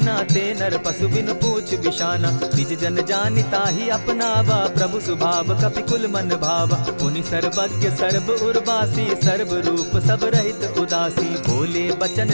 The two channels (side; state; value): both; inverted; correlation -1.00